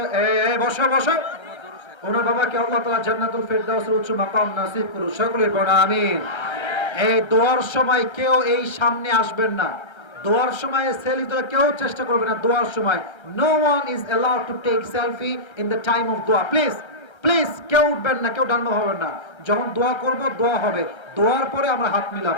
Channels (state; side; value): late; right; 1.3 ms